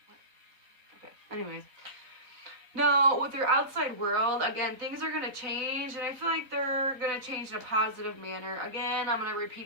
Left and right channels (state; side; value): late; left; 3.9 ms